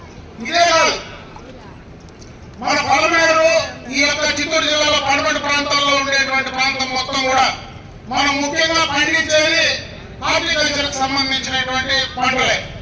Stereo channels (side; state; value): both; identical; correlation 1.00